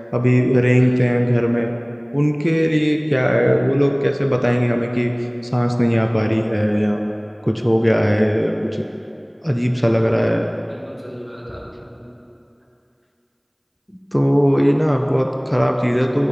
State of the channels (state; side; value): identical; both; correlation 1.00